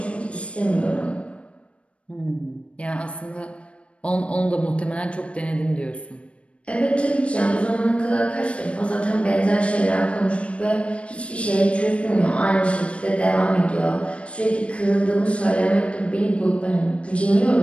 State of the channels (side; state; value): right; late; 0.061 ms